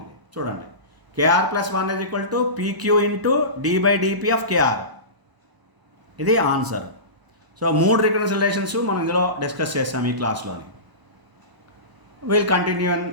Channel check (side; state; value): left; late; 1.0 ms